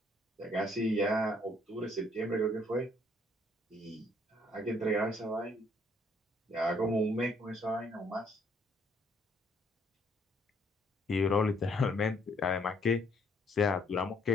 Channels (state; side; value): normal; both; correlation 0.66